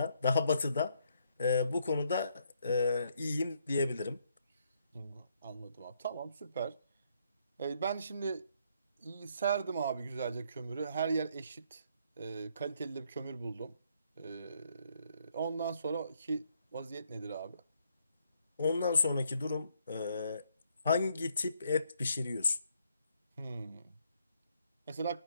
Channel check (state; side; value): inverted; both; correlation -0.72